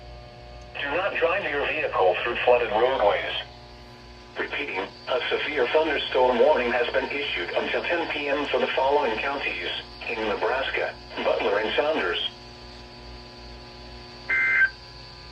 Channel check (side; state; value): both; identical; correlation 1.00